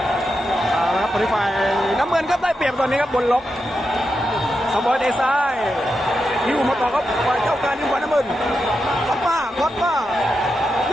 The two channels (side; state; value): both; normal; correlation 0.87